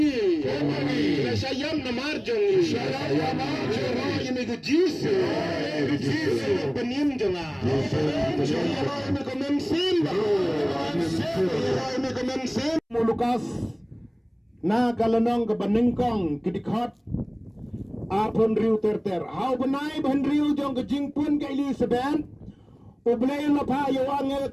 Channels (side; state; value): both; identical; correlation 1.00